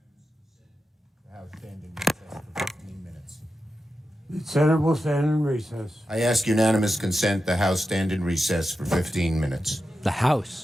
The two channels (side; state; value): both; normal; correlation 0.90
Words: The Senate will stand in recess. I ask unanimous consent the House stand in recess for 15 minutes. The